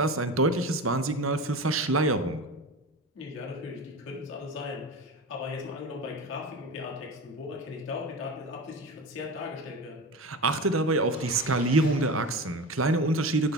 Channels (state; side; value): normal; both; correlation 0.28